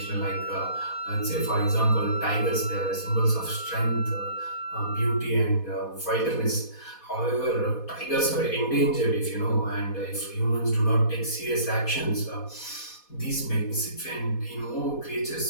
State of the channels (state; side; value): late; right; 4.2 ms